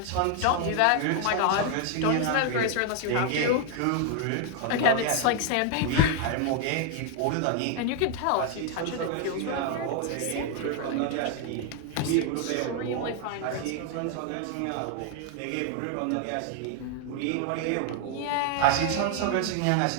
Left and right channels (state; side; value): different; both; correlation 0.01